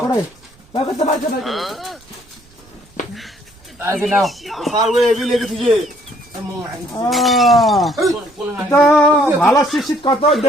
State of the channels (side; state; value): right; noise; rumble, 29 dB below the sound